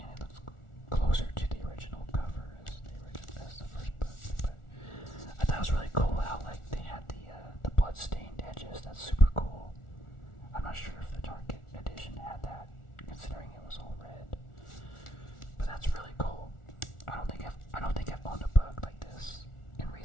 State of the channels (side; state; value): right; late; 1.4 ms